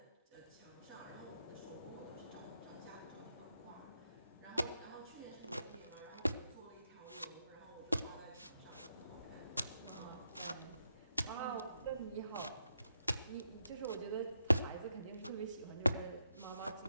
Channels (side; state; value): both; inverted; correlation -0.83